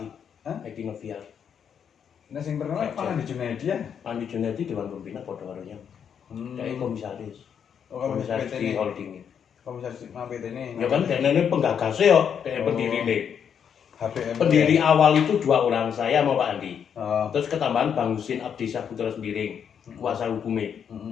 Edi Noviar. Nek sing terkenal Pak Andi Junaidi ya. Andi Junaidi Dewan Pembina padha karo yang. Dia komisaris. Oh, Komisaris PT di ini. holding. Komisaris nang PT ini. Ya kan ini penggagasnya yo, dia pendiri nih. HBM. Pendiri awal itu 2 orang, saya sama Pak Andi. Oh. Terus ketambahan Bang Husin Abdisah Putra Sembiring, kuasa hukumnya.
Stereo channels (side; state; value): right; quieter; 7.8 dB